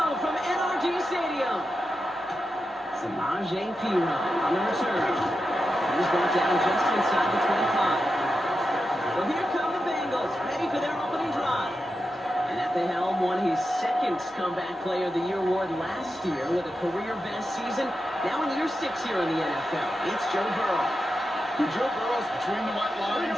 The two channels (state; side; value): normal; both; correlation 0.89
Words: from NRG Stadium. Samaje Perine on the return. He's brought down just inside the 25. So here come the Bengals, ready for their opening drive. And at the helm, won his second Comeback Player of the Year award last year with a career-best season. Now in year 6 here in the NFL, it's Joe Burrow. When Joe Burrow's between the white lines,